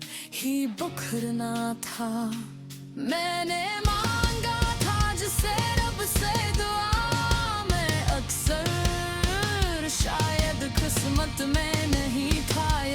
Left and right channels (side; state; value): both; identical; correlation 1.00